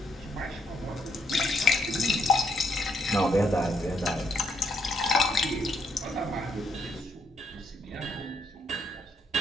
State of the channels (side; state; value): both; normal; correlation 0.73